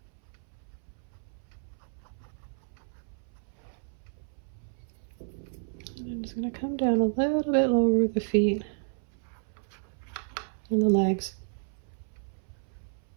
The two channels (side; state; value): left; silent; 57 dB below the other